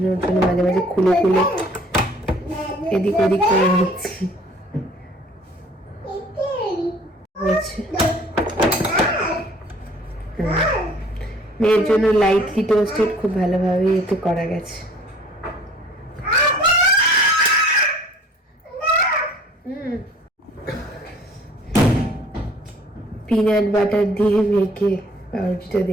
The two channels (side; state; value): both; normal; correlation 0.53